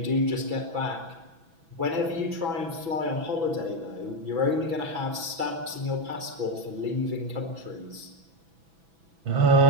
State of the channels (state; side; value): late; left; 6.1 ms